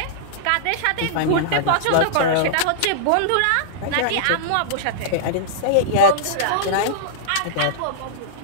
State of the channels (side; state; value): both; different; correlation -0.02